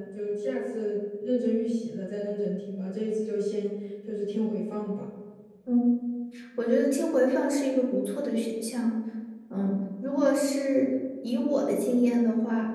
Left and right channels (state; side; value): identical; both; correlation 1.00